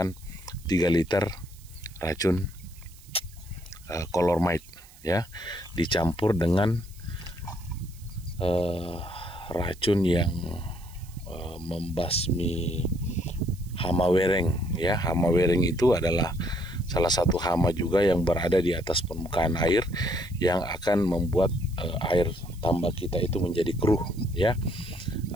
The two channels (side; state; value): right; noise; hiss, 23 dB below the sound